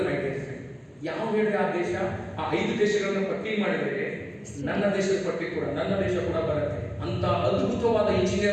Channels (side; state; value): both; identical; correlation 1.00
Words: mind. ಯಾವ ಹೇಳ್ರಿ ಆ ದೇಶ? ಆ 5 ದೇಶಗಳನ್ನ ಪಟ್ಟಿ ಮಾಡಿದ್ರೆ ನನ್ನ ದೇಶದ ಪಟ್ಟಿ ಕೂಡ, ನನ್ನ ದೇಶ ಕೂಡ ಬರುತ್ತೆ. ಅಂತ ಅದ್ಭುತವಾದ